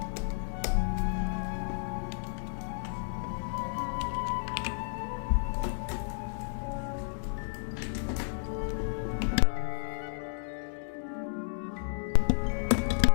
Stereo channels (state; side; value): silent; right; 56 dB below the other